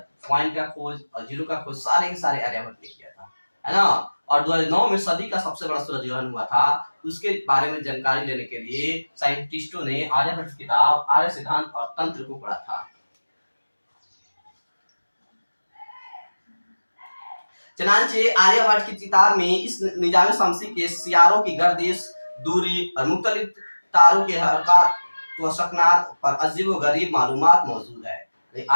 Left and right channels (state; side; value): inverted; both; correlation -1.00